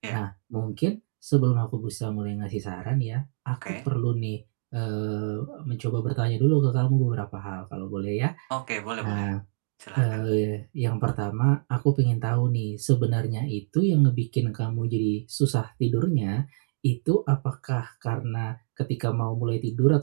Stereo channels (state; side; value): silent; left; digital silence